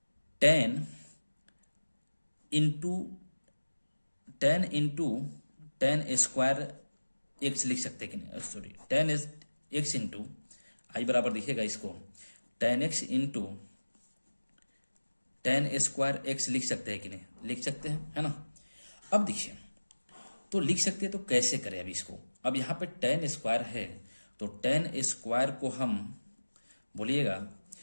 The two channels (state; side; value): inverted; both; correlation -1.00